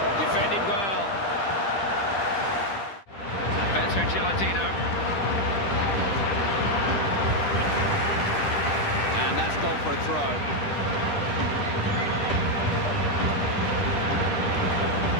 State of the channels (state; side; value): late; right; 10 ms